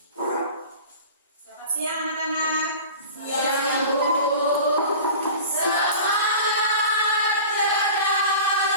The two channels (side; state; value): both; inverted; correlation -0.38